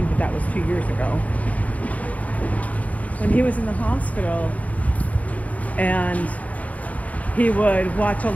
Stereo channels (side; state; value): right; late; 0.070 ms